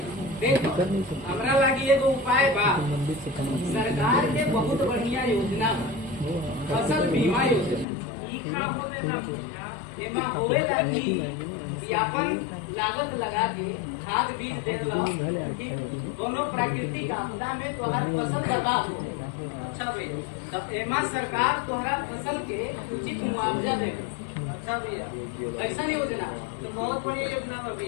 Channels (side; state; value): right; drops out; at 7.9 s